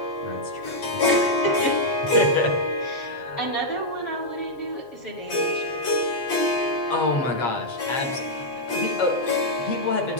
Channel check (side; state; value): right; late; 7.5 ms